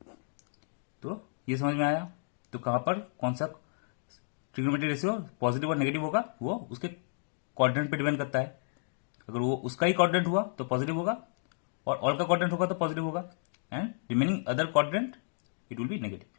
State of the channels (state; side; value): silent; right; digital silence